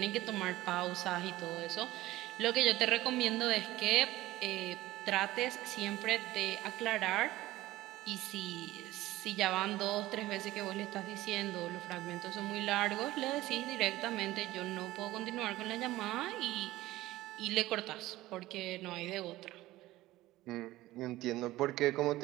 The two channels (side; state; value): left; quieter; 16.9 dB